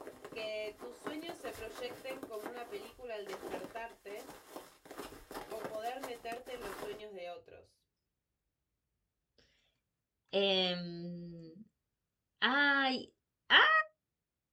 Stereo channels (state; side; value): identical; both; correlation 1.00